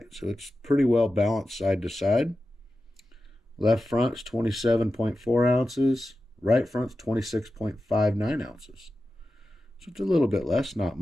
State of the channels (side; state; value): both; normal; correlation 0.93